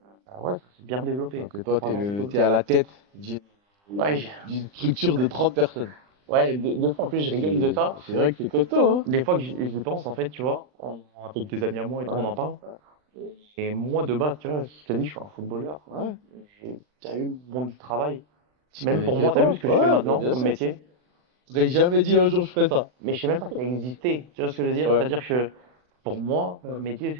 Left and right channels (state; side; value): late; left; 39 ms